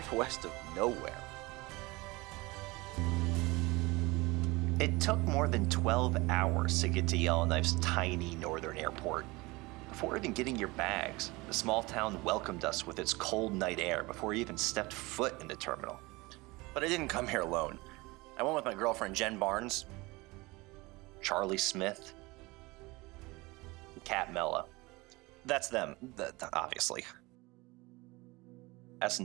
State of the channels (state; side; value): quieter; left; 22.9 dB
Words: of nowhere. It took more than 12 hours to get to Yellowknife's tiny northern airport. Before even getting your bags, the small town welcomed us with its cold night air before we even stepped foot in the terminal. But I didn't come here alone. I went with my girlfriend Jen Barnes, Charlie Smith, and Kat Mella. That's them, obviously. As